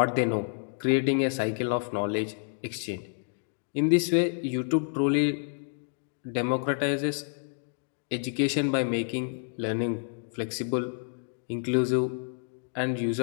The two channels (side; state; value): right; silent; digital silence